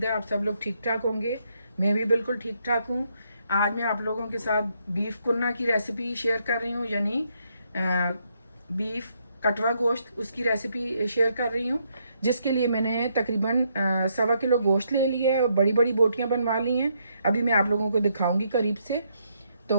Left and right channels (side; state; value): both; inverted; correlation -0.75